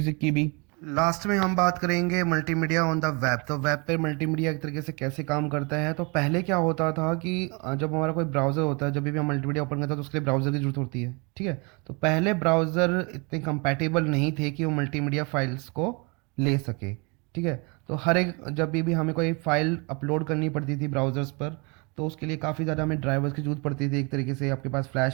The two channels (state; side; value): quieter; left; 30.6 dB